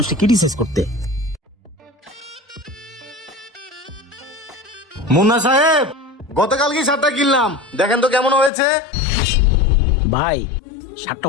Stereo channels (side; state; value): right; drops out; at 8.5 s